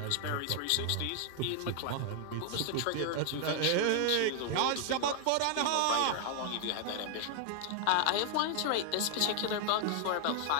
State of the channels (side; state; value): both; different; correlation 0.00